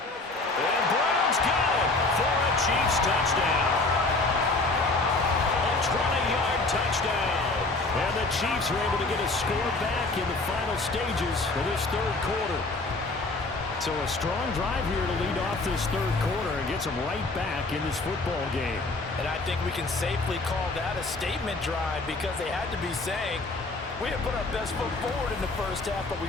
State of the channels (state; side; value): quieter; right; 3.3 dB